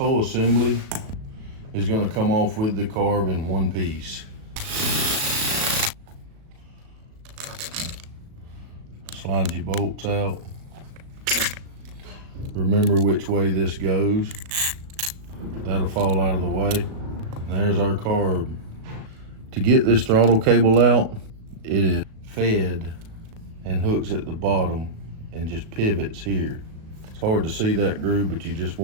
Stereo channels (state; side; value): late; left; 37 ms